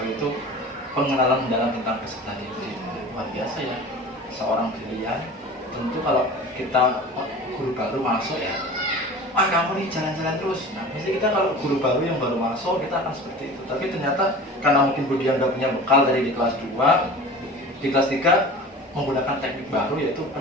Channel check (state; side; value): normal; both; correlation 0.38